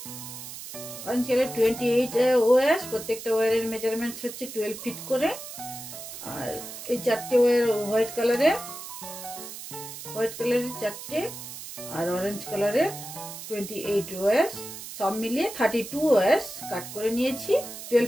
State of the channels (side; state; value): right; noise; hiss, 11 dB below the sound